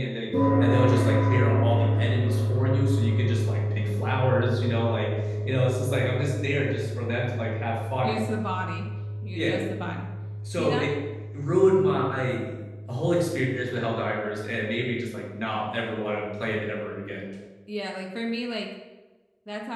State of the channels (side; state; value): both; identical; correlation 1.00